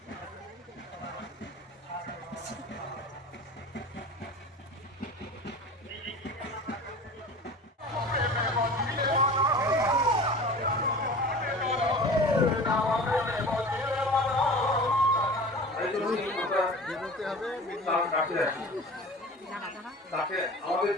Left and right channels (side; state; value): both; normal; correlation 0.38